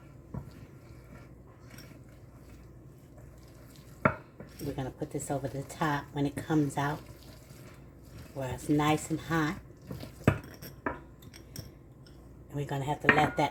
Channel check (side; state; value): both; identical; correlation 1.00